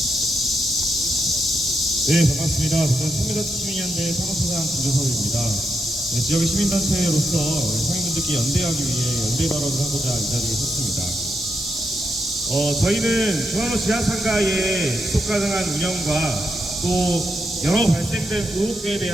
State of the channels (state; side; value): normal; both; correlation 0.83